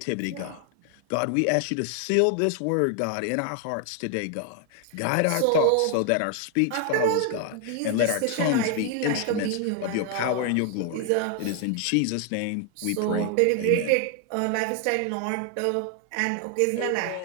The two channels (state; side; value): different; both; correlation 0.00